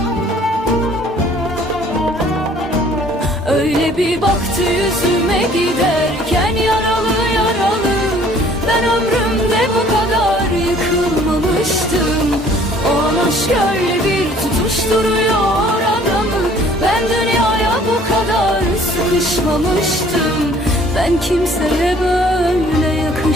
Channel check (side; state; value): both; normal; correlation 0.56